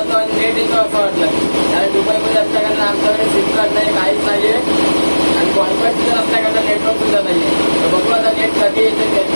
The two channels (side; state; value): both; inverted; correlation -1.00